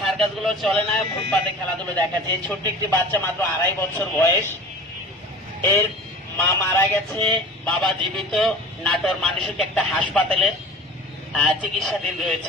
সার্কাস গুলো চলে না, ফুটপাতে খেলাধুলো দেখাচ্ছে। এই ছোট্ট একটি বাচ্চা, মাত্র 2.5 বছর বয়স, এর মা মারা গেছে, বাবা জীবিত। নাটোর মানসিক একটা হাসপাতালের চিকিৎসাধীন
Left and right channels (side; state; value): both; normal; correlation 0.39